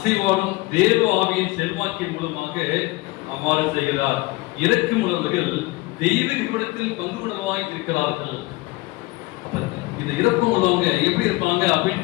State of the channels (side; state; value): right; quieter; 22.0 dB